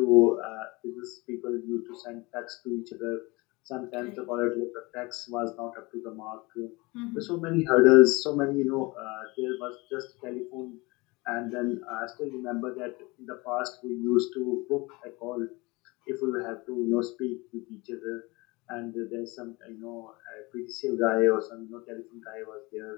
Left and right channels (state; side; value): quieter; right; 24.4 dB